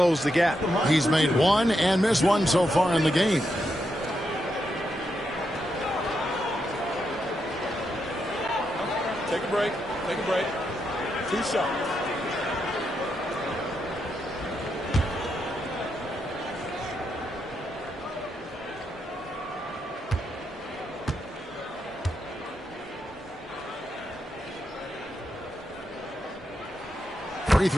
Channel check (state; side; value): normal; both; correlation 0.83